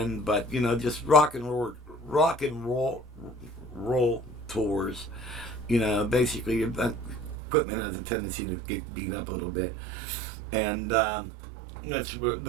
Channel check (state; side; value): drops out; left; at 7.4 s